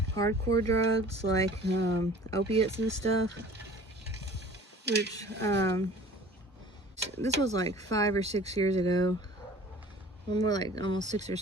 hardcore drugs like opiates and stuff, which this was like 5 or 6 years ago. Well, more like almost 6 or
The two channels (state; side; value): normal; both; correlation 0.46